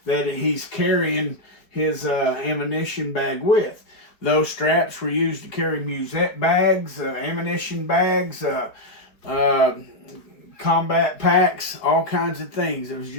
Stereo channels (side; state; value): right; late; 4.5 ms